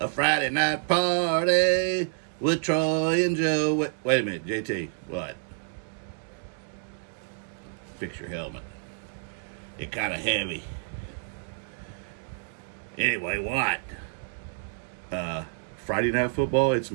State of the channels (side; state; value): left; silent; digital silence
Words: Friday night party with Troy and Joe. Wait a minute, JT. What? Fix your helmet. It's kind of heavy. Anyway, what? Friday night football? It's